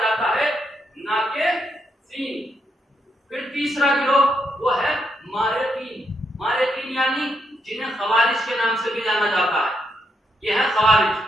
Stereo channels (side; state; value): both; normal; correlation 0.78